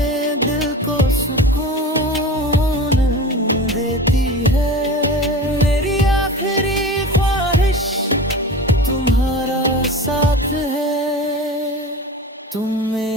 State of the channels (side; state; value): both; normal; correlation 0.33